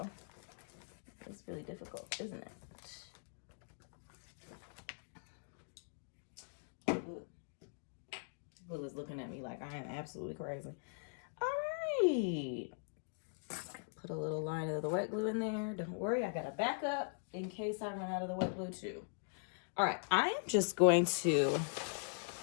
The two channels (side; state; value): right; silent; digital silence